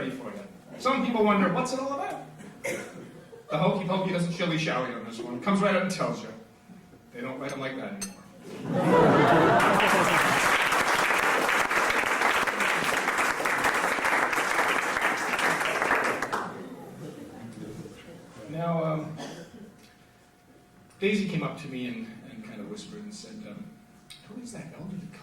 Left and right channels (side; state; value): both; identical; correlation 1.00